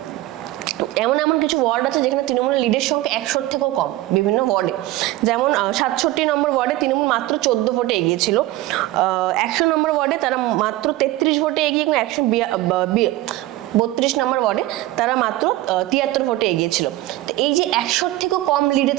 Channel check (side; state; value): left; quieter; 16.9 dB